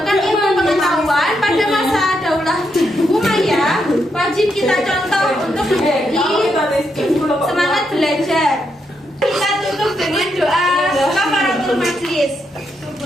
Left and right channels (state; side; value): normal; both; correlation 0.80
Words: ilmu pengetahuan pada masa Daulah Umayyah wajib kita contoh untuk menjadi semangat belajar. Kita tutup dengan doa kafaratul majlis.